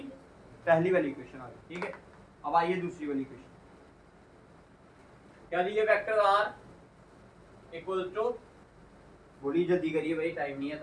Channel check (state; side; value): identical; both; correlation 1.00